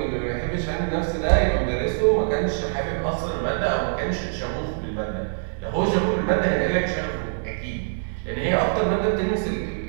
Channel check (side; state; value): left; silent; 62 dB below the other